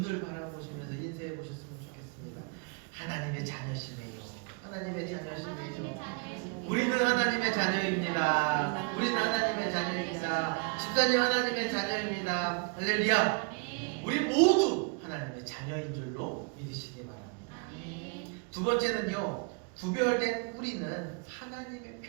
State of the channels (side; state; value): left; quieter; 34.5 dB